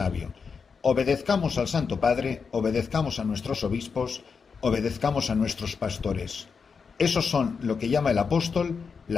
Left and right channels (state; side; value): quieter; right; 5.6 dB